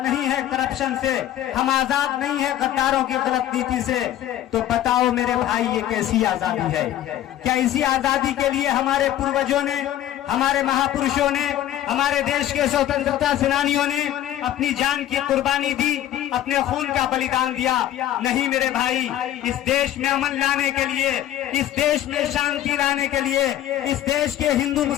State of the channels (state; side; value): quieter; right; 12.3 dB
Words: नहीं है करप्शन से, हम आजाद नहीं है गद्दारों की गलत नीति से। तो बताओ मेरे भाई, ये कैसी आजादी है? क्या इसी आजादी के लिए हमारे पूर्वजों ने, हमारे महापुरुषों ने, हमारे देश के स्वतंत्रता सेनानियों ने अपनी जान की कुर्बानी दी, अपने खून का बलिदान दिया? नहीं मेरे भाई, इस देश में अमन लाने के लिए, इस देश में शांति लाने के लिए, इस देश के हिंदू